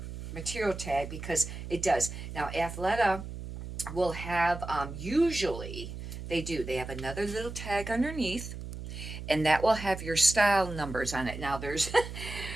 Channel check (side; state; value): right; noise; hum, 9 dB below the sound